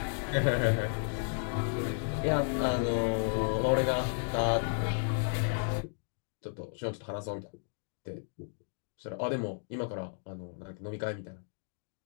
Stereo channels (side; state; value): right; silent; digital silence